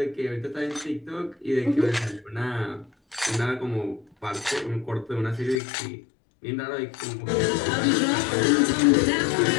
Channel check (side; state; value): right; drops out; at 5.6 s